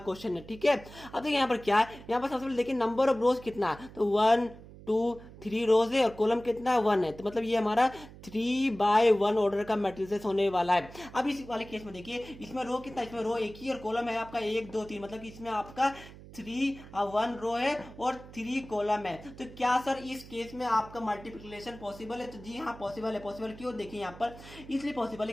है। ठीक है, अब देखिए यहाँ पर क्या है, यहाँ पर सबसे पहले देखिए नंबर ऑफ रोज कितना है, तो 1 2 3 रोज है और कॉलम कितना है 1 है, तो मतलब ये हमारा 3/1 ऑर्डर का मैट्रिसेस होने वाला है। अब इस वाले केस में देखिए इसमें रो कितना, इसमें रो एक ही और कॉलम है आपका 1 2 3, मतलब कि इसमें आपका 1 रो है और 3 कॉलम है। तो क्या सर इस केस में आपका मल्टीप्लिकेशन पॉसिबल है, तो जी हाँ पॉसिबल है। पॉसिबल क्यों, देखिए यहाँ पर इसलिए पॉसिबल है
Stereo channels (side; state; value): right; noise; hum, 18 dB below the sound